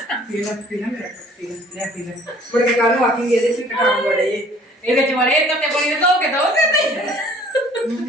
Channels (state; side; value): normal; both; correlation 0.54